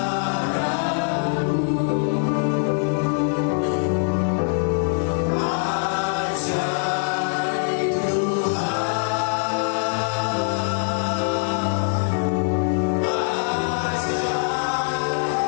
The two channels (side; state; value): right; silent; 64 dB below the other